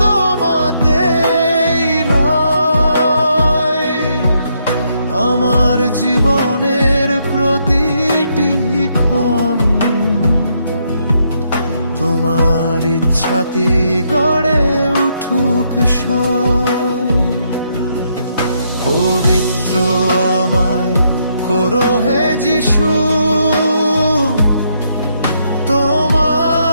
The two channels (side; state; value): both; inverted; correlation -0.75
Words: তোমাতেই রয়, আমার জীবনের প্রতিটি ক্ষণ তোমার ইচ্ছাতে গড়ে উঠুক সয়। পবিত্র আমায় করো হে যিশু,